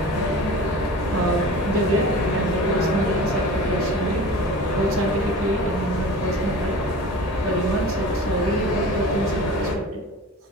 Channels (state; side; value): normal; both; correlation 0.37